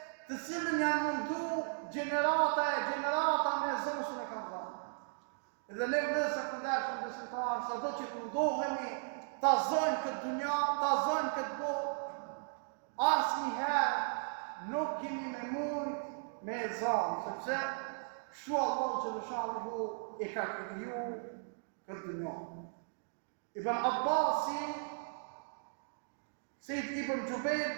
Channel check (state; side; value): silent; left; digital silence